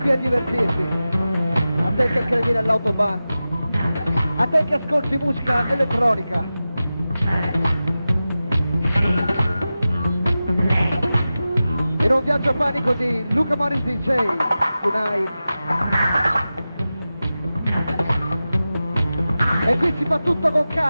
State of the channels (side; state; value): both; inverted; correlation -0.94